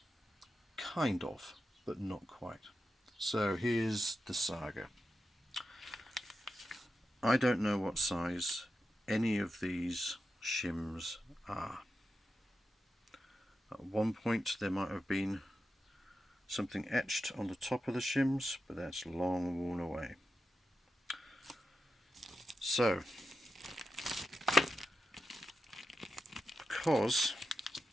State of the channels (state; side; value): normal; both; correlation 0.90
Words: Kind of, but not quite. So here's the saga. I don't know what size any of these shims are. At one point there might have been something etched on the top of the shims, but that's long worn away. So, because,